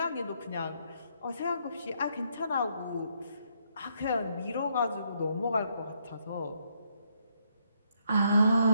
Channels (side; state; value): both; inverted; correlation -0.74